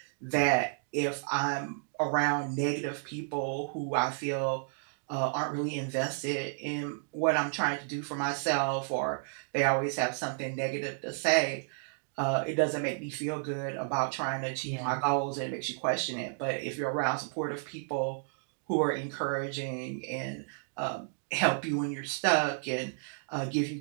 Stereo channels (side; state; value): left; silent; digital silence